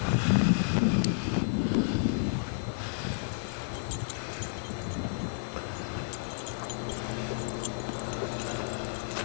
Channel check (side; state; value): right; silent; digital silence